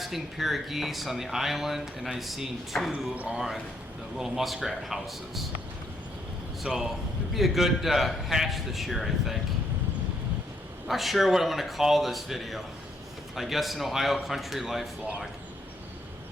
pair of geese on the island, and I've seen 2 on the little muskrat houses. So it'd be a good hatch this year, I think. Not sure what I'm going to call this video. I guess an Ohio country life vlog.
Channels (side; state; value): both; normal; correlation 0.73